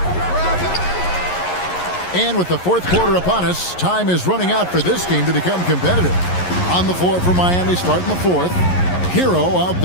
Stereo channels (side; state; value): right; late; 11 ms